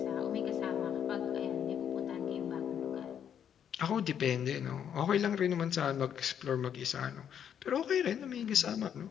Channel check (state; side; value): quieter; right; 8.7 dB